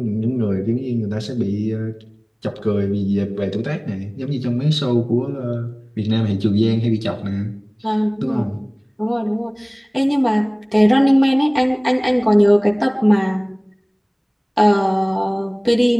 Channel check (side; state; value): both; identical; correlation 1.00